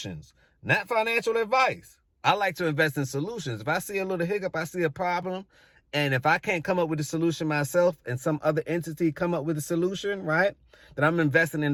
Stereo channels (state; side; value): identical; both; correlation 1.00